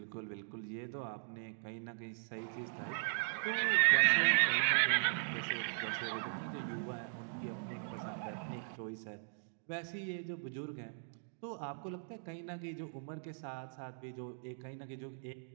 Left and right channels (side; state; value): left; silent; digital silence